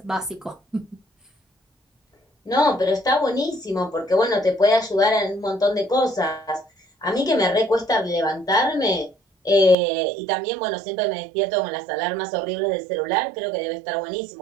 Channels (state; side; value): drops out; left; at 9.8 s